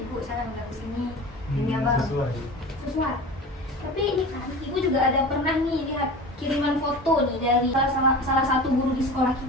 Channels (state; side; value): normal; both; correlation 0.34